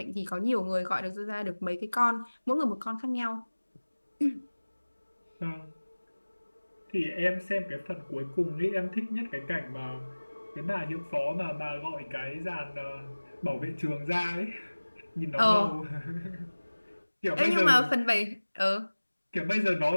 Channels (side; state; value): both; inverted; correlation -1.00